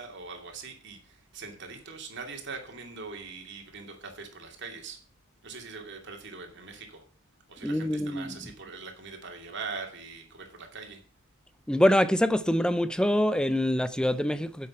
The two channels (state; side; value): normal; both; correlation 0.89